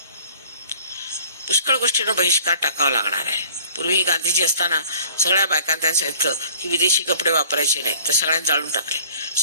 पुष्कळ गोष्टींना बहिष्कार टाकावा लागणार आहे. पूर्वी गांधीजी असताना सगळ्या बायकांना त्यांना सांगितलं की विदेशी कपडे वापरायचे नाही, तर सगळ्यांनी जाळून टाकले.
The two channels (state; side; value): inverted; both; correlation -0.51